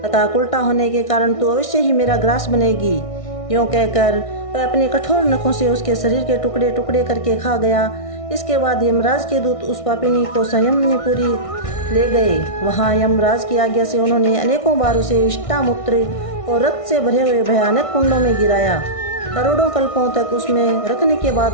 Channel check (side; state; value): right; late; 1.6 ms